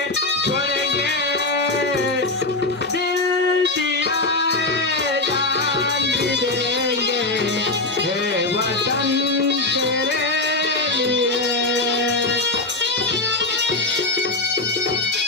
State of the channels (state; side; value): quieter; right; 3.0 dB